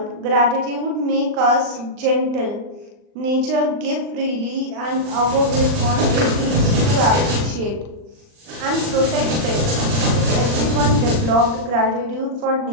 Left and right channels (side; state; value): left; late; 39 ms